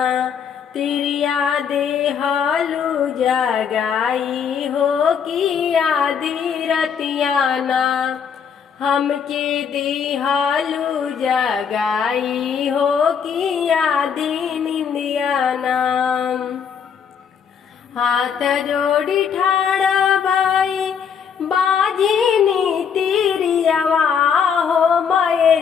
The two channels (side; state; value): right; quieter; 7.1 dB